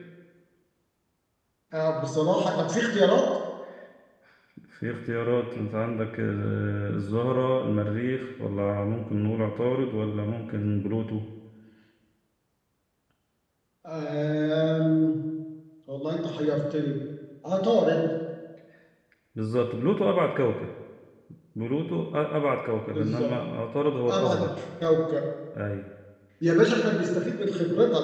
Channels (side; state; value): both; identical; correlation 1.00